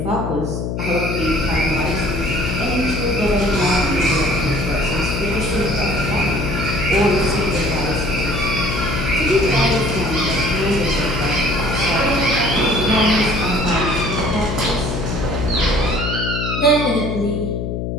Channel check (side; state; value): left; noise; hum, 3 dB below the sound